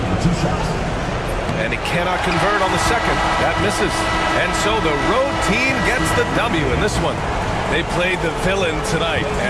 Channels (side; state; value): both; identical; correlation 1.00